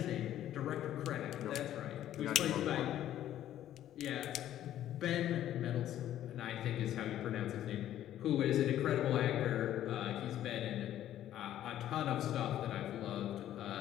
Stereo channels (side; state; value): right; quieter; 12.1 dB